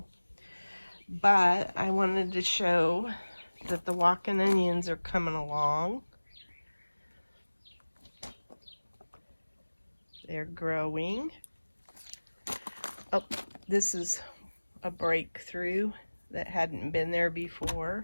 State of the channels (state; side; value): inverted; both; correlation -1.00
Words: but I wanted to show that the walking onions are coming along. They're growing. Oh, this is a breakthrough that hadn't been there